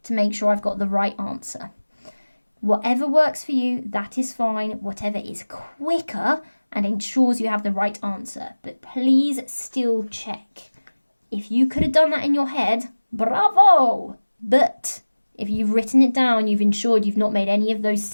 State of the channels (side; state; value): both; inverted; correlation -1.00